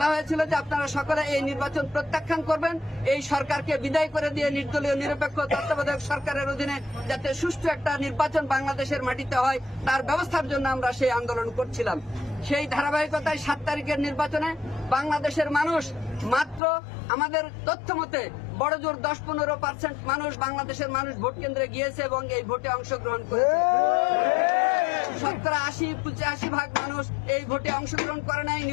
হয়েছিল যে আপনারা সকলে এই নির্বাচন প্রত্যাখ্যান করবেন, এই সরকারকে বিদায় করে দিয়ে নির্দলীয় নিরপেক্ষ তত্ত্বাবধায়ক সরকারের অধীনে যাতে সুষ্ঠু একটা নির্বাচন বাংলাদেশের মাটিতে হয় তার ব্যবস্থার জন্য আমরা সেই আন্দোলন করছিলাম। সেই ধারাবাহিকতায় 7 তারিখের নির্বাচনে বাংলাদেশের মানুষ মাত্র আমাদের তথ্য মতে বড় জোর 10-15% মানুষ বাংলাদেশের মানুষ ভোট কেন্দ্রে গিয়েছে এবং এই ভোটে অংশগ্রহণ করেছে। শতকরা 80-85% মানুষ এই ভোটে অংশগ্রহণ করে নাই,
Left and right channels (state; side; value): drops out; right; at 16.6 s